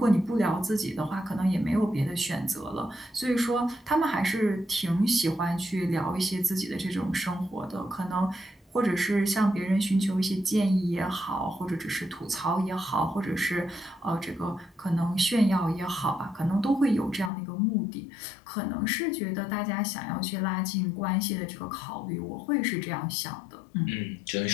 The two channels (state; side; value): drops out; right; at 17.3 s